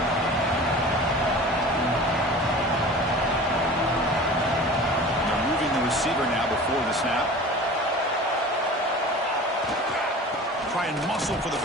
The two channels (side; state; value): both; normal; correlation 0.39